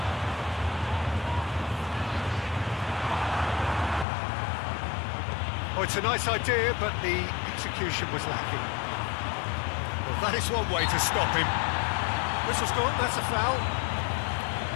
Oh, it's a nice idea, but the execution was lacking. Well, that is one way to stop him. Whistle's gone, that's a foul.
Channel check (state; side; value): drops out; right; at 4.0 s